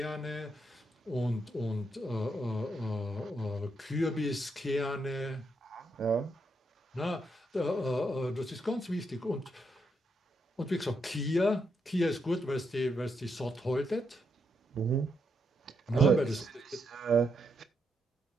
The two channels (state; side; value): normal; both; correlation 0.80